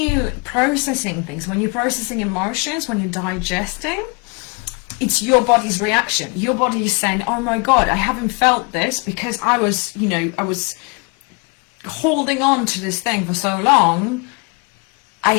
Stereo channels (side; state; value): right; quieter; 31.5 dB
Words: processing things, when you're processing emotions, when you're digesting, it's your body's reaction. Your body is saying, oh my God, I haven't felt this because I was holding on to this thing for so long. I